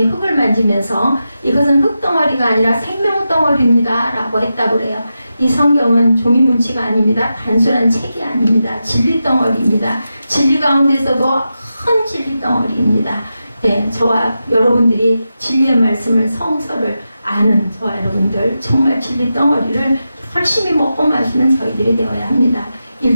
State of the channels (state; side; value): inverted; both; correlation -0.90